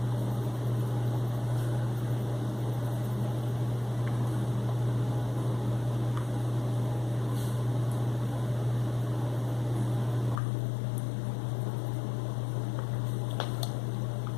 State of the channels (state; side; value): drops out; right; at 10.4 s